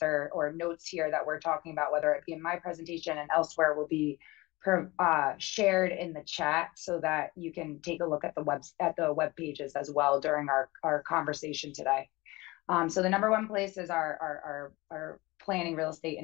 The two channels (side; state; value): right; quieter; 21.9 dB